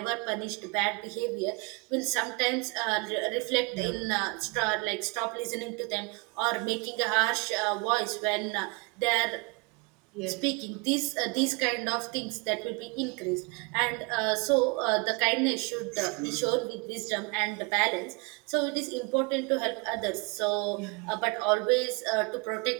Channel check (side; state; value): left; quieter; 29.7 dB